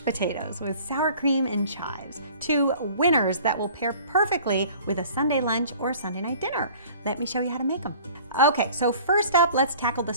potatoes with sour cream and chives. Two winners that will pair perfectly with a Sunday lunch or Sunday night dinner. Let me show you how to make them. Okay, so first up, let's tackle the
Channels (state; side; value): inverted; both; correlation -0.48